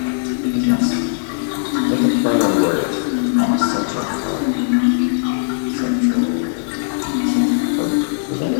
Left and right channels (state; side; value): silent; right; digital silence